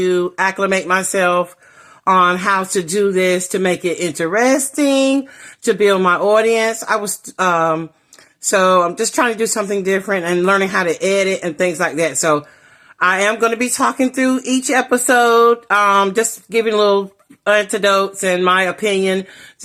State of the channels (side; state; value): both; identical; correlation 1.00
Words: acclimate myself on how to do this to make it interesting, to build my audience. So I'm just trying to do something different and learning how to edit and things like that. So I am going to be talking through each episode, just giving little anecdotes and my opinion